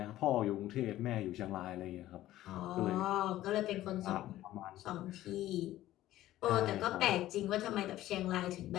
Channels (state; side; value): quieter; right; 14.6 dB